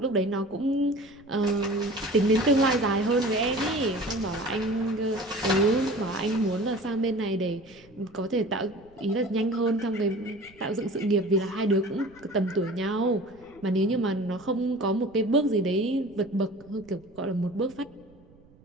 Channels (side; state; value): right; noise; rumble, 27 dB below the sound